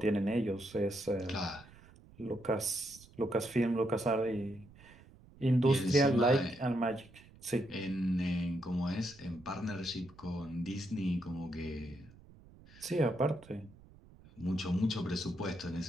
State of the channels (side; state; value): right; noise; rumble, 23 dB below the sound